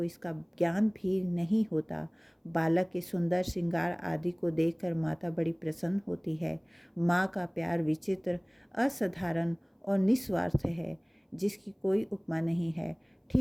इसका ज्ञान भी नहीं होता। बालक के सुंदर श्रृंगार आदि को देखकर माता बड़ी प्रसन्न होती है। माँ का प्यार विचित्र, असाधारण और निस्वार्थ है, जिसकी कोई उपमा नहीं है।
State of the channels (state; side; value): identical; both; correlation 1.00